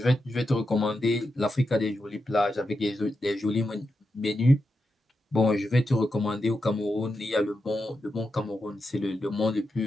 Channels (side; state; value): both; normal; correlation 0.87